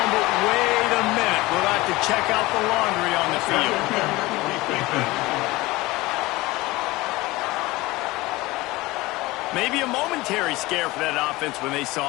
but wait a minute. We'll have to check out the laundry on the field. Maybe a momentary scare for that offense when they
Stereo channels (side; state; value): right; quieter; 20.5 dB